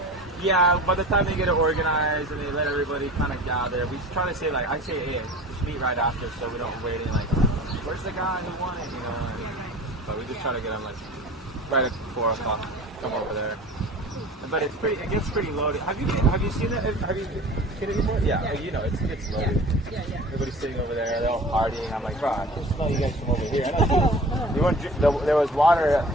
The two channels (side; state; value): both; normal; correlation 0.40